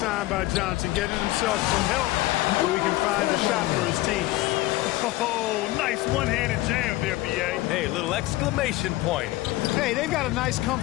by Johnson, getting himself some help so he can find a shot for his team. Oh, nice one-handed jam there, B.A. Hey, little exclamation point. Hey, they've got a nice,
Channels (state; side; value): quieter; right; 17.9 dB